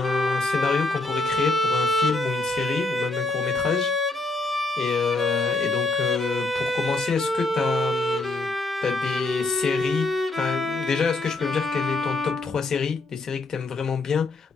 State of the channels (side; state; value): right; quieter; 3.2 dB